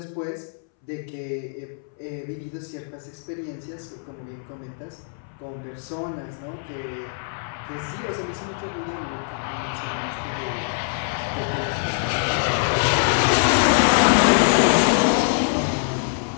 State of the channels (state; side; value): silent; right; 63 dB below the other